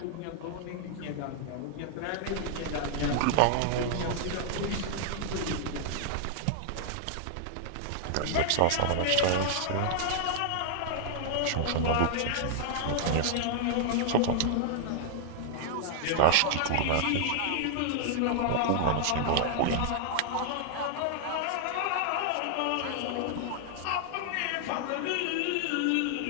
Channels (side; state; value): both; different; correlation -0.01